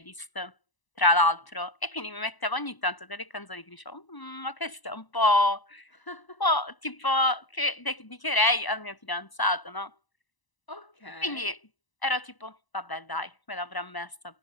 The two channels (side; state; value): right; late; 1.0 ms